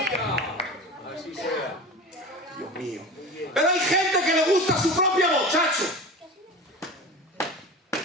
Dios mío. Pero hay gente que le gusta su propia voz, chacho.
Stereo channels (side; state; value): both; normal; correlation 0.32